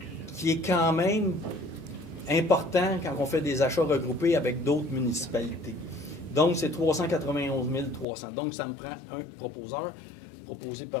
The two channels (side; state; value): right; drops out; at 8.1 s